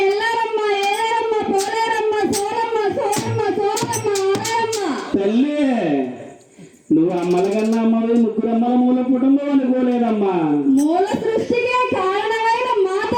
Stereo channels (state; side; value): identical; both; correlation 1.00